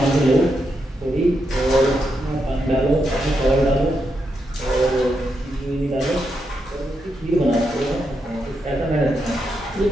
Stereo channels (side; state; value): both; normal; correlation 0.83